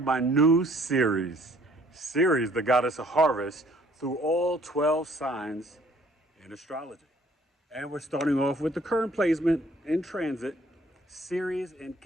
my new series, Ceres, the goddess of harvest, through all 12 signs in astrology. And we're starting off with the current placement in transit, Ceres in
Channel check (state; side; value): normal; both; correlation 0.59